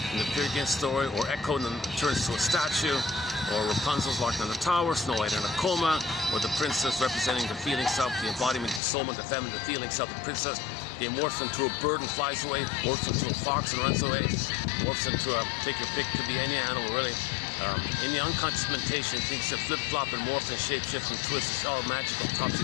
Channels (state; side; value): drops out; right; at 8.8 s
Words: in the Peer Gynt story, or Echo and then turns to a statue, or Rapunzel's locked in a tower, Snow White in a coma, or the princess representing the feeling self, the embodiment, the soul, the feminine, the feeling self, the princess. They morphs into a bird and flies away, morphs into a fox and runs away, morphs into take your pick, could be any animal really. In the unconscious mentation, things that flip-flop and morph and shape-shift and twist. It's all magical,